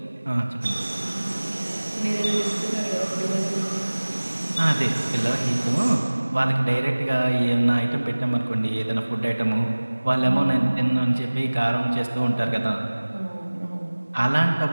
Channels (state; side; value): inverted; both; correlation -1.00